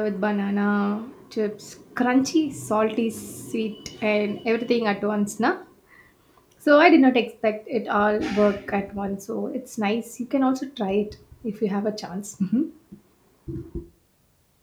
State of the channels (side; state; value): both; identical; correlation 1.00